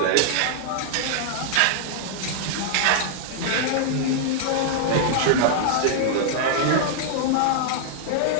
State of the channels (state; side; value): different; both; correlation -0.01